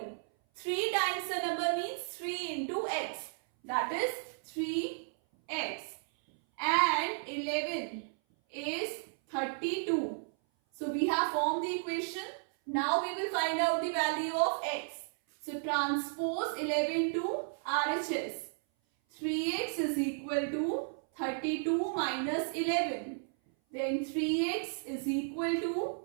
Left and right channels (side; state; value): left; silent; 55 dB below the other